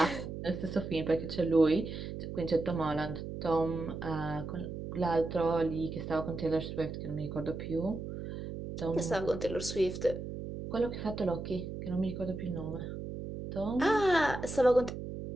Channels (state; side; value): noise; right; hum, 7 dB below the sound